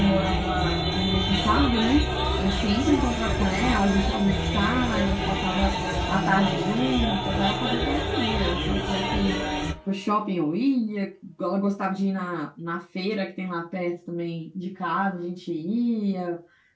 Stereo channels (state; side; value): identical; both; correlation 1.00